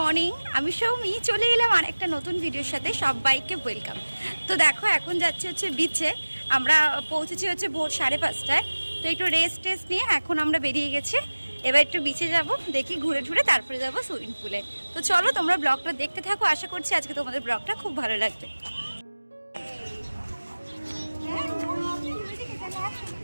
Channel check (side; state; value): both; inverted; correlation -1.00